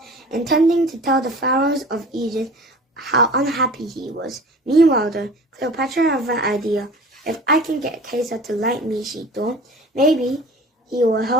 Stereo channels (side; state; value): both; normal; correlation 0.42